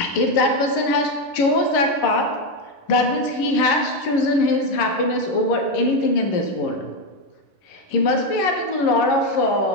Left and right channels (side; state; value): right; late; 11 ms